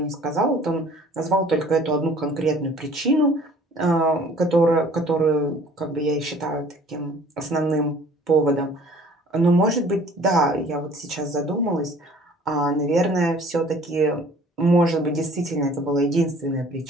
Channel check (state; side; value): normal; both; correlation 0.52